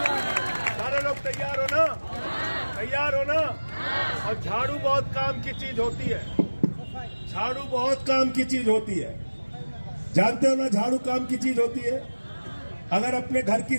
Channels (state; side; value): inverted; both; correlation -1.00